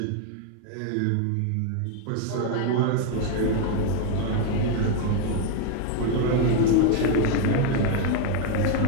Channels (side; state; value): both; different; correlation 0.01